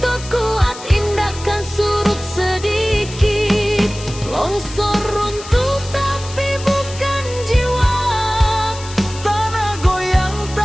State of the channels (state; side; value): noise; left; hiss, 14 dB below the sound